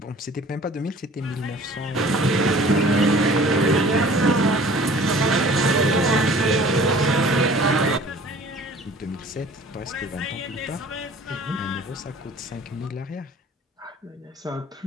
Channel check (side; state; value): both; normal; correlation 0.49